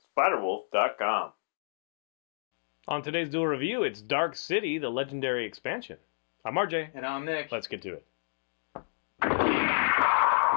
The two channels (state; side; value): silent; right; digital silence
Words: SpiderWolf.com. On today's Duel Review, it's Dark City, the legendary expansion. I'm RJ. And I'm Nick. Let's get to it.